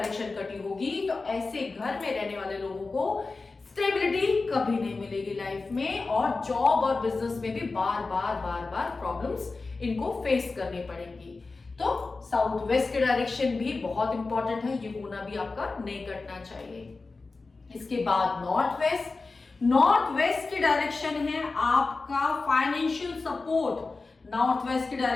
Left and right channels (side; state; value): right; quieter; 3.8 dB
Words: कटी होगी तो ऐसे घर में रहने वाले लोगों को स्टेबिलिटी कभी नहीं मिलेगी लाइफ में, और जॉब और बिजनेस में भी बार बार प्रॉब्लम्स इनको फेस करनी पड़ेंगी। तो साउथ वेस्ट की डायरेक्शन भी बहुत इंपॉर्टेंट है, ये कोना भी आपका नहीं कटना चाहिए। इसके बाद नॉर्थ वेस्ट। नॉर्थ वेस्ट की डायरेक्शन है आपका फाइनेंशियल सपोर्ट। नॉर्थ वेस्ट की